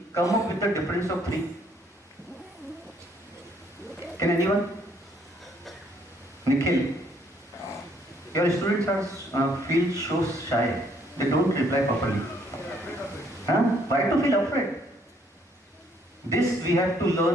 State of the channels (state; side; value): normal; both; correlation 0.66